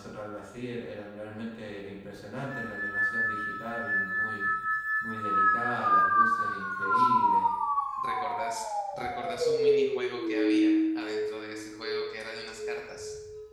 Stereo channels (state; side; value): identical; both; correlation 1.00